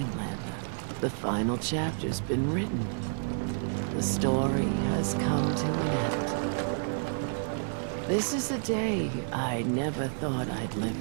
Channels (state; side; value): silent; left; digital silence